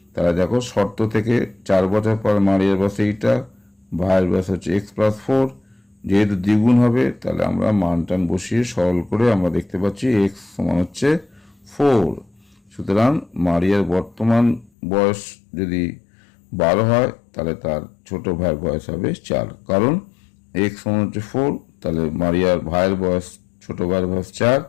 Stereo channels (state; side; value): drops out; right; at 14.7 s